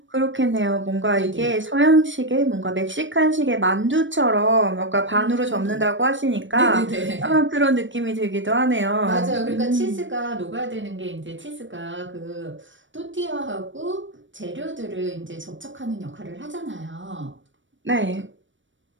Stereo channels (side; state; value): left; late; 0.55 ms